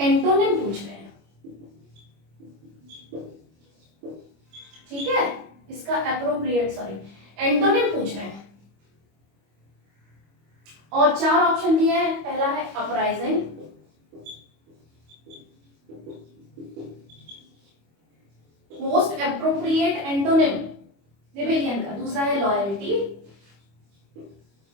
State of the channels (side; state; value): left; late; 25 ms